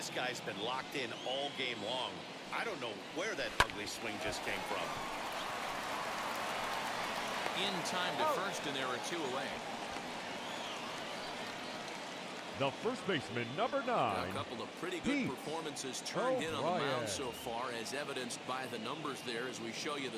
guy's been locked in all game long. I don't know where that ugly swing just came from. In time to first, and there are 2 away. The first baseman, number A 9. couple of pretty good Pete performances turned in on the O'Brien. mound so far, as evidenced by the numbers there as we show you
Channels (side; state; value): both; identical; correlation 1.00